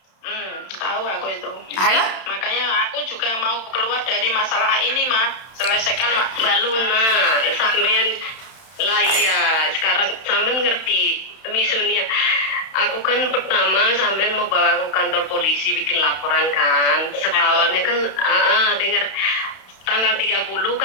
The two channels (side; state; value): right; late; 31 ms